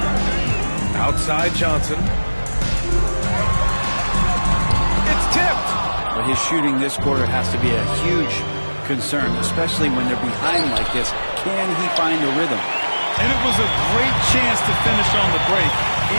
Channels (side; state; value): both; inverted; correlation -1.00